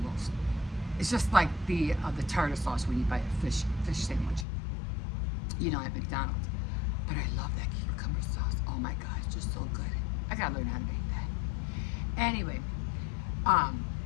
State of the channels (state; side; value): drops out; right; at 4.5 s